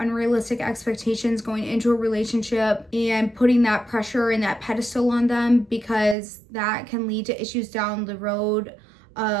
expectations going into a relationship and putting that pressure and that pedestal on them, because that can lead to issues down the road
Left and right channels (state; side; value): drops out; left; at 6.2 s